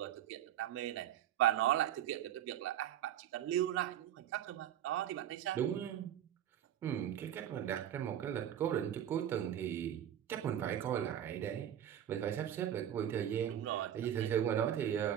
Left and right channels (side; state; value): left; quieter; 10.6 dB